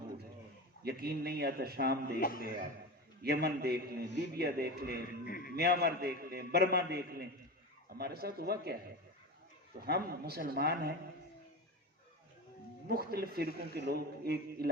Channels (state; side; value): normal; both; correlation 0.24